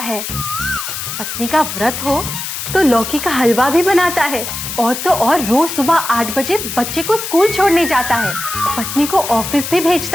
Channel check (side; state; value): left; noise; hiss, 6 dB below the sound